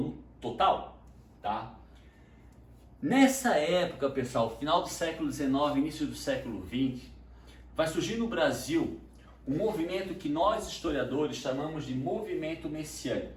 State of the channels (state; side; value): identical; both; correlation 1.00